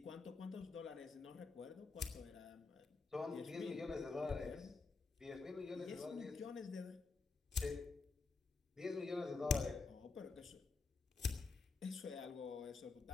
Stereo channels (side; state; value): right; quieter; 4.2 dB